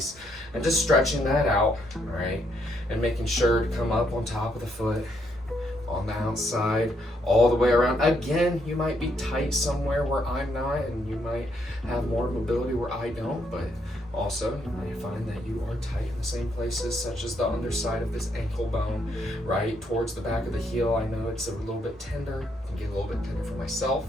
and just stretching that out, all right? And making sure to come up on top of the foot, on the outside, all the way around. Again, you might be tight somewhere where I'm not, and you might have more mobility where I don't, but also, you might find that you are tight in the same places, such as the underside of this ankle bone, right towards the back of the heel. I know it's a little bit tender, it can get a little bit tender for myself.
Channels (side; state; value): both; normal; correlation 0.74